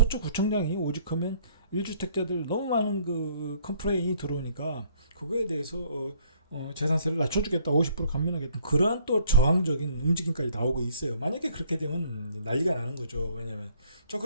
오직하면 1주택자들 너무 많은 그 컴플레인이 들어오니까 그거에 대해서 재산세를 낮춰주겠다, 50% 감면하겠다. 그러한 또 저항적인 움직임까지 나오고 있어요. 만약에 그렇게 되면 난리가 나는 거죠. 왜냐면 자,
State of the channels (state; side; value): inverted; both; correlation -0.61